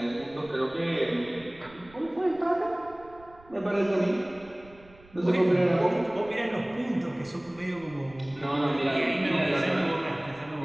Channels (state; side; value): noise; right; rumble, 25 dB below the sound